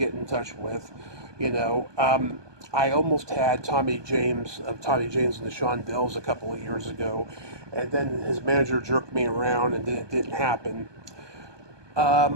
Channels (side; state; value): left; late; 1.2 ms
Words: in touch with. I almost had Tommy James of Tommy James and the Shondells a couple of years ago, and then his manager jerked me around, and then it didn't happen.